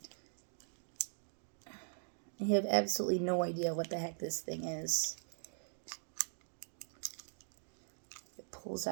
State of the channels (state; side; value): silent; left; digital silence